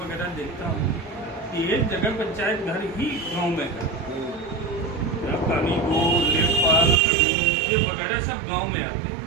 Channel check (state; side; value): drops out; left; at 7.0 s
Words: देखता हूँ कि एक जगह पंचायत घर ही गांव में है, पानी को लेखपाल ये वगैरह सब गांव में आते